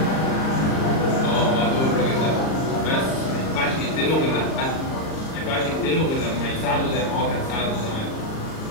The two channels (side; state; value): right; late; 38 ms